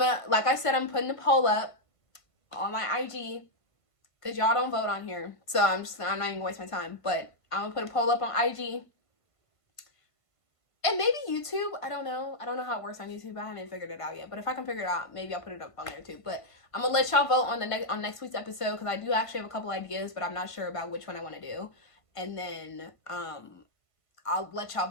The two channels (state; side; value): late; right; 1.5 ms